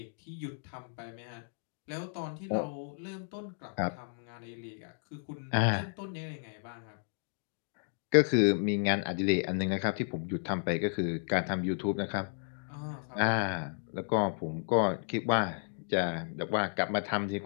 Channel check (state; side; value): silent; right; digital silence